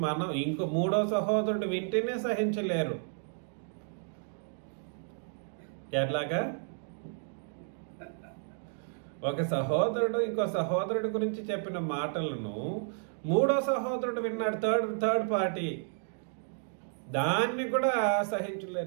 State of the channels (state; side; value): silent; left; digital silence